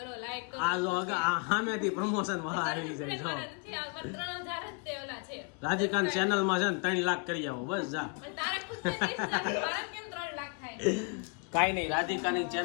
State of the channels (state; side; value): quieter; right; 36.2 dB